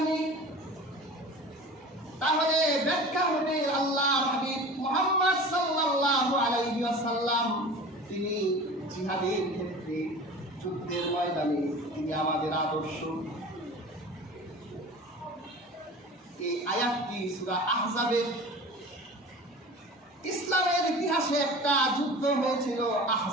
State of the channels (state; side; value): normal; both; correlation 0.38